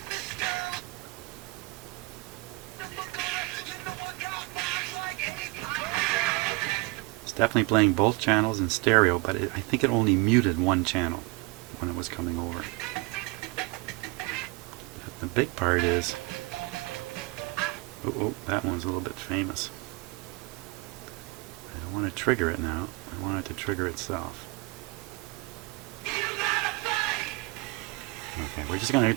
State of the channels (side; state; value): left; quieter; 24.3 dB